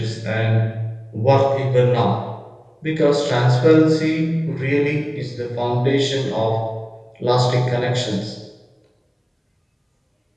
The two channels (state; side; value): identical; both; correlation 1.00